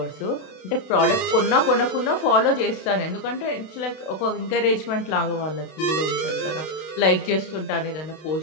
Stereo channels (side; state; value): right; late; 32 ms